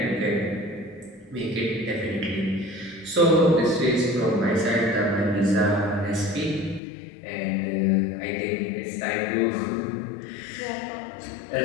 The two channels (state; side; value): drops out; right; at 6.8 s